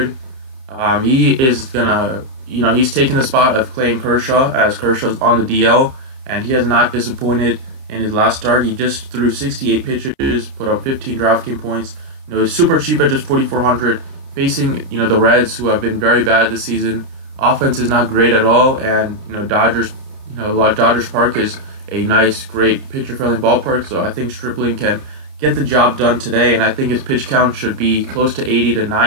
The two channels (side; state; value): left; late; 30 ms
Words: He is gonna, he's taking the spot of Clayton Kershaw as Kershaw's on the DL, and he has not disappointed in his last start. He just threw 68 pitches, put up 15 DraftKings points. He's super cheap at just 4,400. Facing, the Reds, who have been very bad this season. Offense is not great at all, and, Dodgers Park is a nice, great pitcher-friendly ballpark, so I think Stripling can get the job done today, and I think his pitch count should be close to 80 to